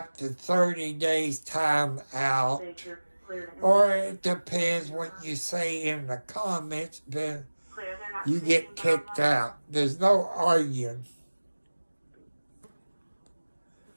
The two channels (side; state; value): both; inverted; correlation -1.00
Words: to 30 days time out. Or it depends what you say in the comments, then you get kicked out. There's no arguing.